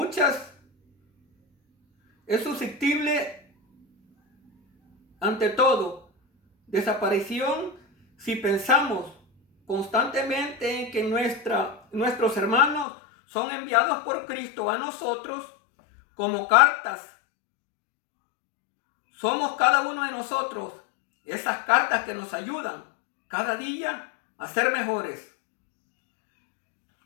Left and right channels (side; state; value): right; drops out; at 12.9 s